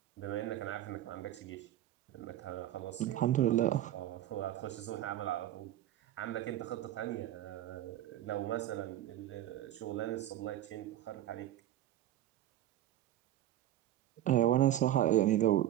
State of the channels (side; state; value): left; quieter; 13.0 dB